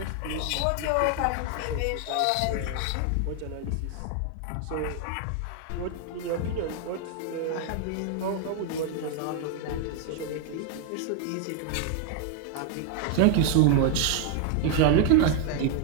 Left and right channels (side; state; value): both; different; correlation 0.01